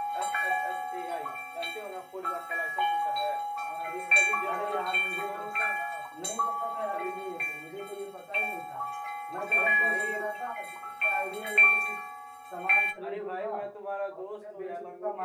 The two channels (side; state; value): both; identical; correlation 1.00